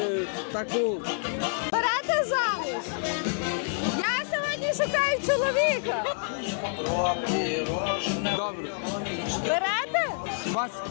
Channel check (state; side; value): silent; right; digital silence